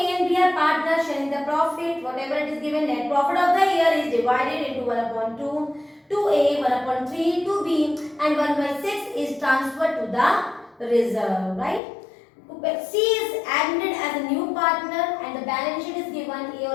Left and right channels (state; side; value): drops out; right; at 11.8 s